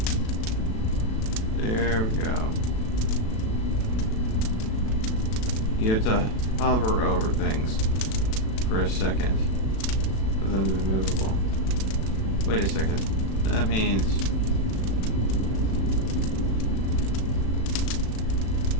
There we go. You have to hover over things for a second for them to be movable. Wait a second. That means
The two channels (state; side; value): late; right; 36 ms